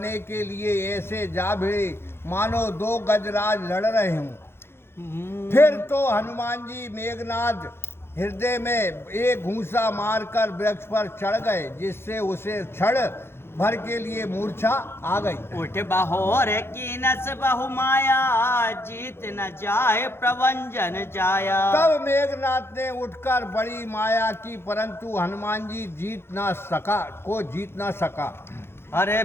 के लिए ऐसे जा भिड़े मानो दो गजराज लड़ रहे हों। फिर तो हनुमान जी मेघनाथ हृदय में एक घूंसा मारकर वृक्ष पर चढ़ गए, जिससे उसे क्षण भर के लिए मूर्छा आ गई। उठ बहोर की नस बहु माया, जीत न जाए प्रवंजन जाया। तब मेघनाथ ने उठकर बड़ी माया की, परंतु हनुमान जी जीत ना सका। अरे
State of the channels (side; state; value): right; late; 0.12 ms